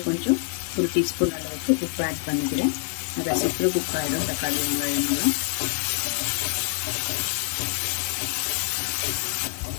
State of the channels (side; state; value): right; silent; 61 dB below the other